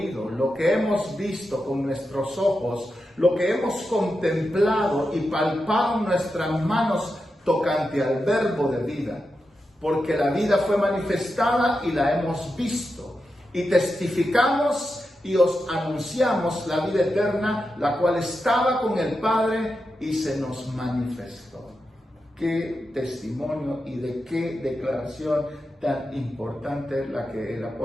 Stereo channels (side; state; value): both; normal; correlation 0.89